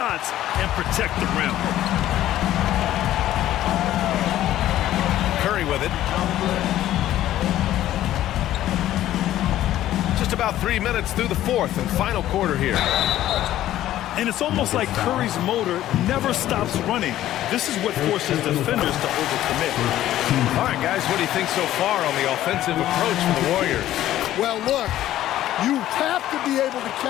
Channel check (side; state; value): right; quieter; 13.3 dB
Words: and protect the rim. Curry with it. Just about 3 minutes through the fourth and final quarter here. And it's almost like Curry's motor never stops running. This is what forces defenders to overcommit. All right, guys, what do you think so far on the offensive approach for the Warriors? Well, look, you have to be able to